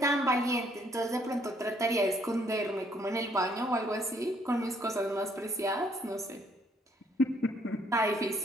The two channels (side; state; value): both; normal; correlation 0.67